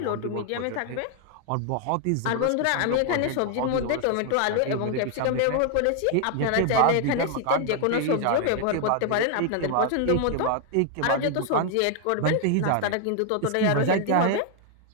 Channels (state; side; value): different; both; correlation 0.00